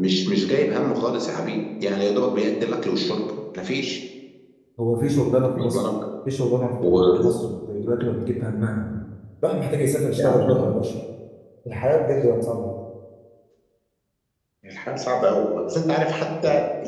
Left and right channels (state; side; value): identical; both; correlation 1.00